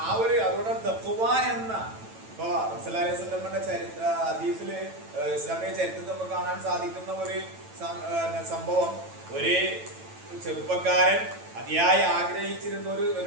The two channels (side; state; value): left; late; 9.0 ms